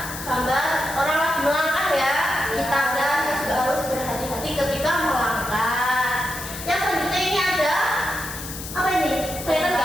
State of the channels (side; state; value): left; noise; hiss, 10 dB below the sound